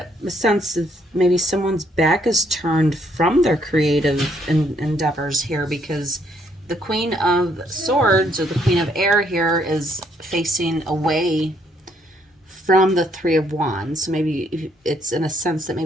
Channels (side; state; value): both; normal; correlation 0.70